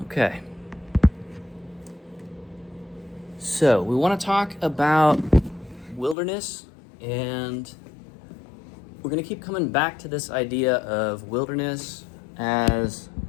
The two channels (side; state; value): right; drops out; at 6.2 s